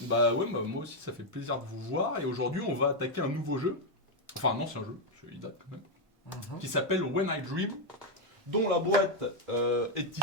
Bah ouais, bah, moi aussi ça fait plaisir de vous voir. Et aujourd'hui on va attaquer un nouveau jeu. Enfin un ancien jeu, il date quand même. Qui s'appelle When I Dream. Dont la boîte est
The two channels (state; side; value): normal; both; correlation 0.01